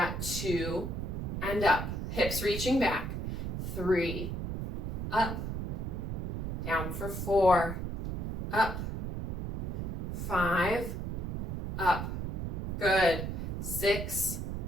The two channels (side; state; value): right; noise; rumble, 3 dB below the sound